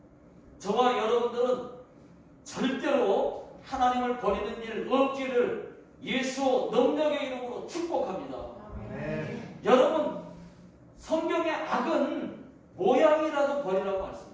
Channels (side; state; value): both; identical; correlation 1.00